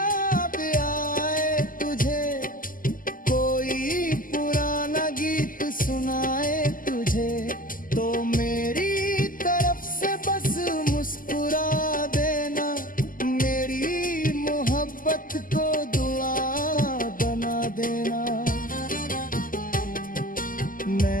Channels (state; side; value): late; right; 0.41 ms